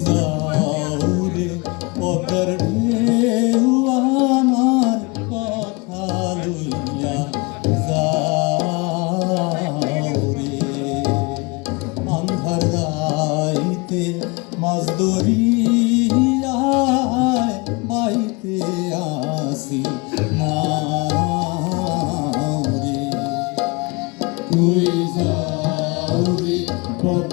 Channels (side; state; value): right; quieter; 27.5 dB